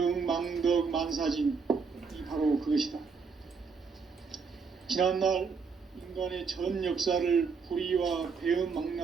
망덕 만사진, 이 바로 그것이다. 지난날 인간의 전 역사를 불의와 배움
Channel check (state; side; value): quieter; left; 5.3 dB